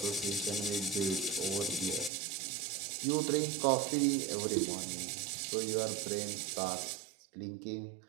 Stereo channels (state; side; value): drops out; left; at 2.1 s